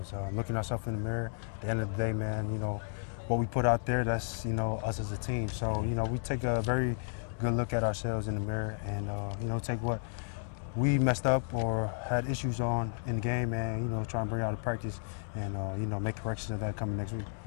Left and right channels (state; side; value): silent; right; 56 dB below the other